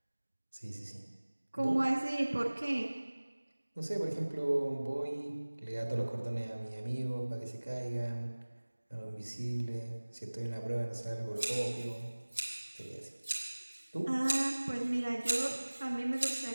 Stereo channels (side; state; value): both; inverted; correlation -1.00